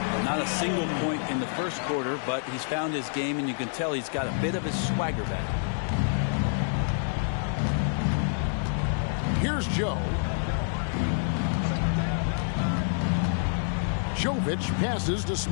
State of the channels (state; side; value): silent; right; digital silence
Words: Not a single point in the first quarter, but he's found his game, and you can tell he's got a bit of his swagger back. Here's Joe. Jovic passes to